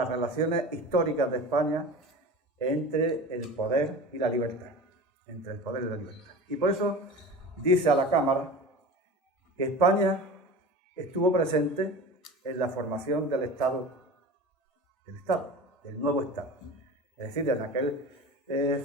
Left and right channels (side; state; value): both; normal; correlation 0.33